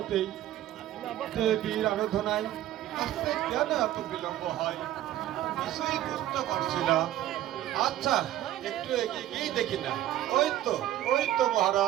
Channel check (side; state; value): left; quieter; 13.1 dB